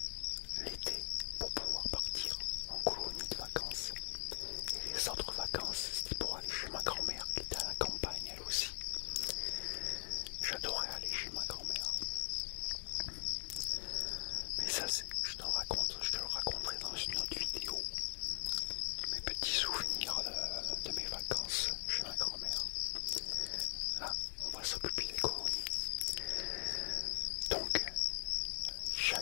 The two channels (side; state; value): right; silent; digital silence